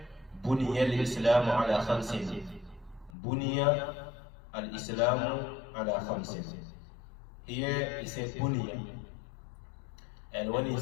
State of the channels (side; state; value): right; drops out; at 3.2 s